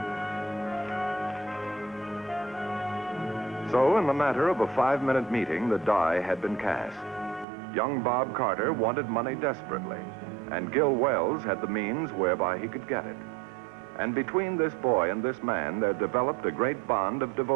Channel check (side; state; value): left; drops out; at 7.5 s